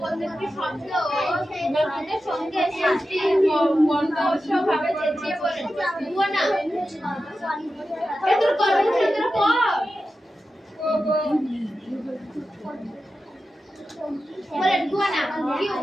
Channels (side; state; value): both; normal; correlation 0.92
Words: সঙ্গে ভাবে চেঁচিয়ে বলেন, না এদের কর বলেন গুয়ানা কি